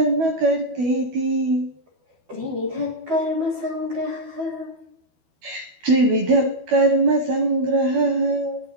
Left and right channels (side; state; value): left; late; 12 ms